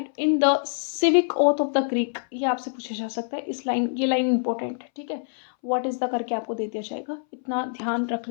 in the civic oath of the Greek, ये आपसे पूछा जा सकता है, इस लाइन, ये लाइन इंपॉर्टेंट है, ठीक है। व्हाट इज द करके आपको दे दिया जाएगा, इतना ध्यान रख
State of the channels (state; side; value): silent; right; 61 dB below the other